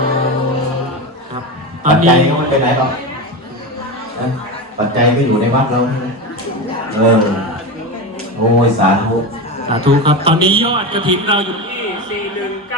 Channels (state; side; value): normal; both; correlation 0.20